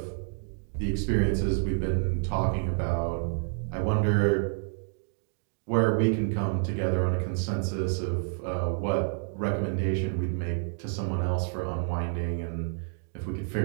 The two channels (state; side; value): silent; left; digital silence